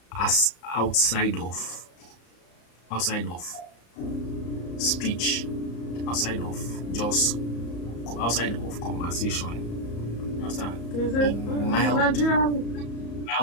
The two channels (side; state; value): right; late; 34 ms